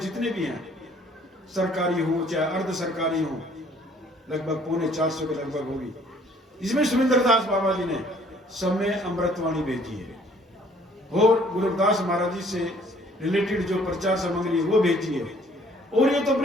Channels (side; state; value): both; normal; correlation 0.59